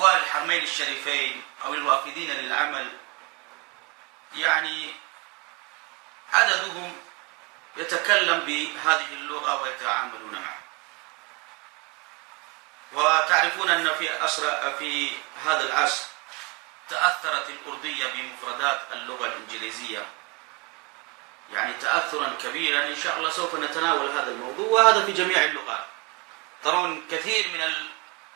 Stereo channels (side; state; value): left; quieter; 29.0 dB